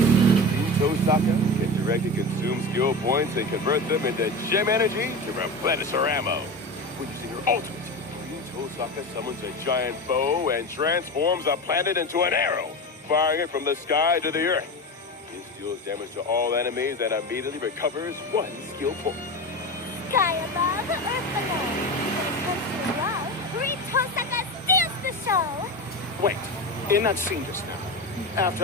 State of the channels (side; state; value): both; normal; correlation 0.24